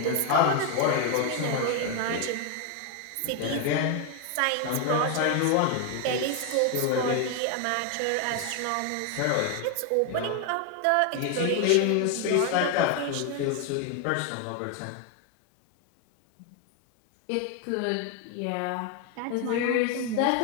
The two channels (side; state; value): both; different; correlation 0.01